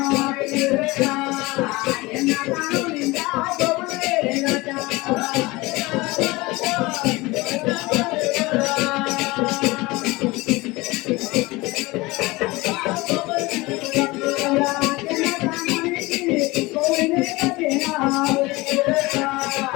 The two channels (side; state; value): right; quieter; 21.9 dB